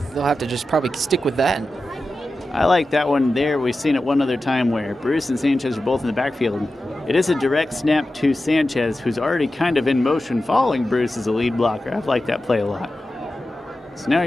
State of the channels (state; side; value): normal; both; correlation 0.93